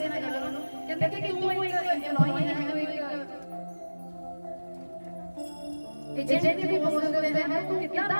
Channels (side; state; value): both; inverted; correlation -1.00